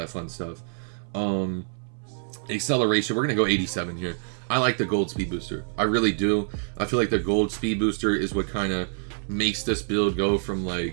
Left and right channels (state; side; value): silent; left; 61 dB below the other